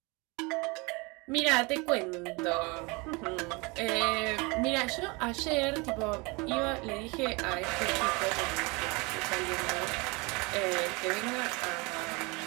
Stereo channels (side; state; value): left; quieter; 27.4 dB